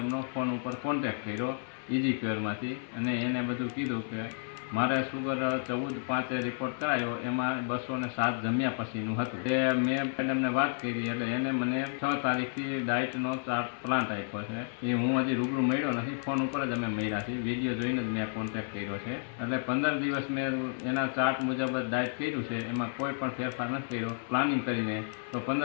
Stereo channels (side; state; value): right; silent; 56 dB below the other